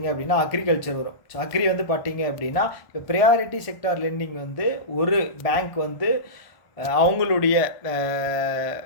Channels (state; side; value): late; right; 1.5 ms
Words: அப்படின்னா அக்ரிகல்ச்சர் வரும். ஸோ அக்ரி வந்து பார்த்தீங்க அப்படின்னா இப்போ ப்ரையாரிட்டி செக்டார் லெண்டிங் வந்து ஒரு பேங்க் வந்து அவங்களுடைய